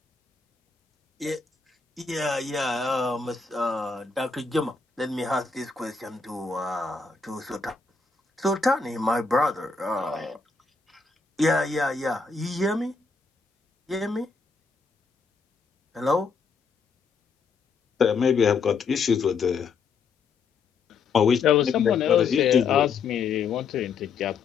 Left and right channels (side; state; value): right; quieter; 4.9 dB